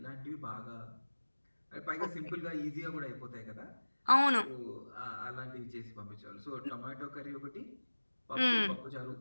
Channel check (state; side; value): inverted; both; correlation -1.00